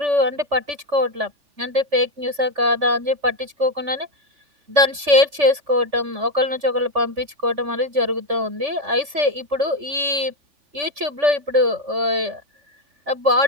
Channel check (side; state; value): left; late; 3.4 ms